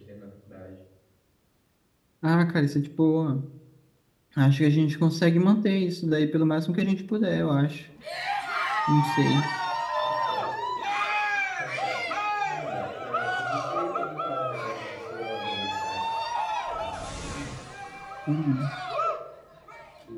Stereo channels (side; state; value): both; identical; correlation 1.00